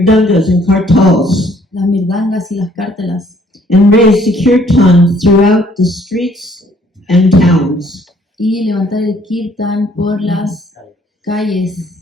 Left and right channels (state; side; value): normal; both; correlation 0.62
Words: and kartals, Las mirdangas y las cártelas. and raise the kirtan throughout the streets and towns. Y levantar el kirtan por las